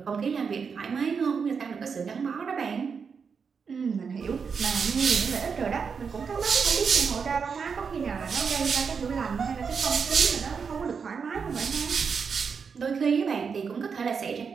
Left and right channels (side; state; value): left; quieter; 5.9 dB